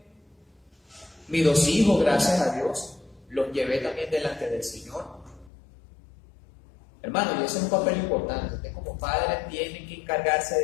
Mis 2 hijos, gracias a Dios, los llevé también delante del Señor. Hermano, y ese es un papel importante. Usted como padre tiene que encargarse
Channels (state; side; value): drops out; right; at 5.5 s